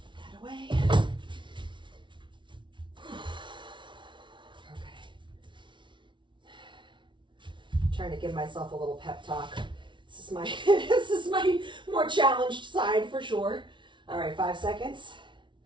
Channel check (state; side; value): late; left; 0.24 ms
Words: away. Okay. Trying to give myself a little pep talk. This is my this is my more challenged side for sure. All right, 5 seconds.